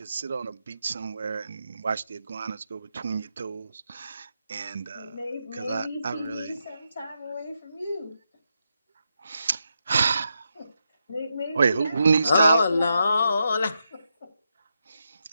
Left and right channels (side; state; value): both; inverted; correlation -0.84